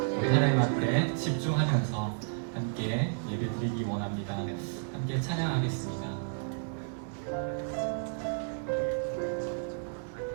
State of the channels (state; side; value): silent; left; digital silence